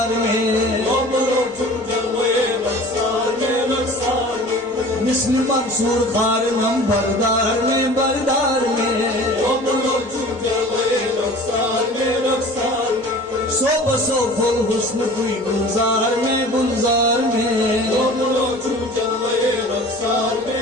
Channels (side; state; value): both; normal; correlation 0.43